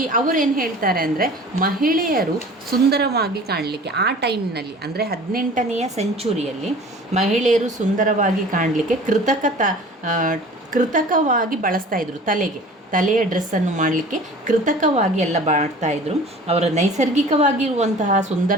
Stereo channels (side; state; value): both; normal; correlation 0.44